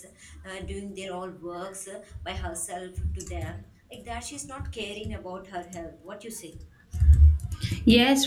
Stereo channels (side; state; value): both; identical; correlation 1.00